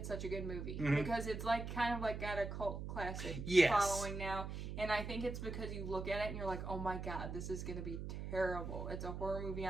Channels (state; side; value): noise; right; hum, 6 dB below the sound